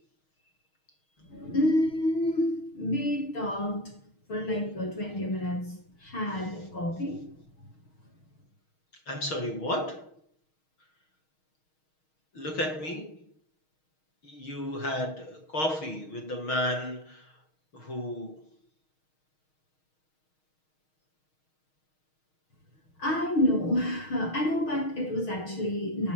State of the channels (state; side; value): late; right; 6.4 ms